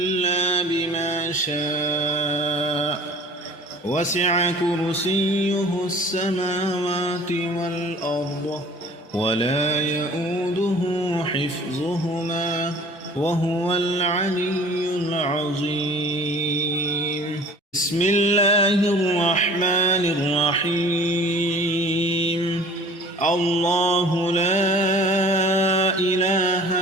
بما شاء وسع كرسيه السماوات والأرض ولا يؤوده حفظهما وهو العلي العظيم. بسم الله الرحمن الرحيم. الله لا إله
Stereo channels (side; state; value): both; normal; correlation 0.47